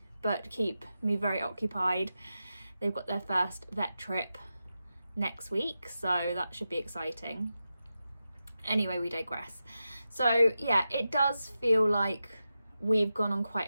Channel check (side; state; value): both; inverted; correlation -0.91